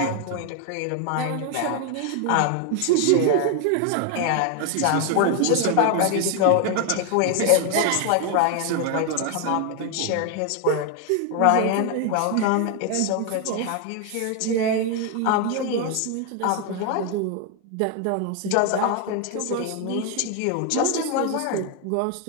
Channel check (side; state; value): both; different; correlation 0.01